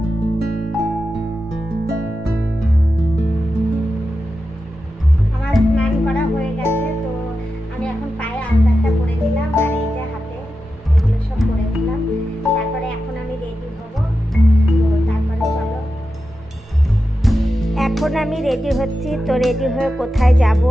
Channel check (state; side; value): normal; both; correlation 0.91